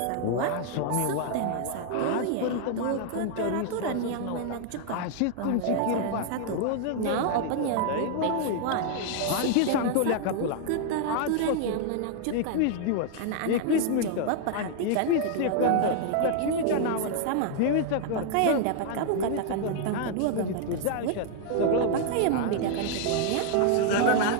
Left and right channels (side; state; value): both; different; correlation -0.01